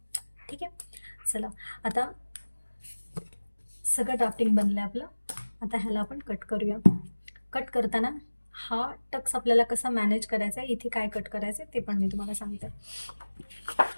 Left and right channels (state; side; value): inverted; both; correlation -1.00